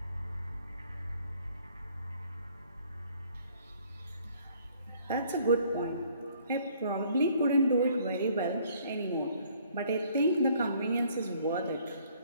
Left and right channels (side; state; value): both; inverted; correlation -0.61